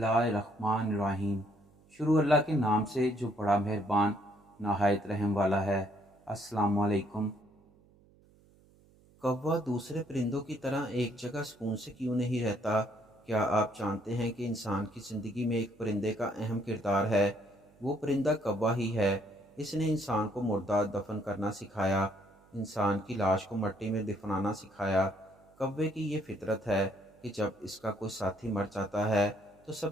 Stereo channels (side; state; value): right; noise; hum, 29 dB below the sound